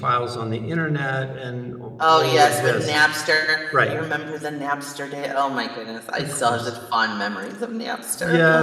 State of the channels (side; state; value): both; identical; correlation 1.00